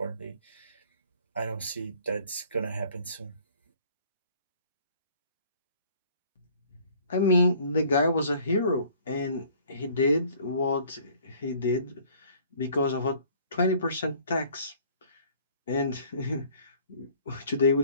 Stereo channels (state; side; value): inverted; both; correlation -0.55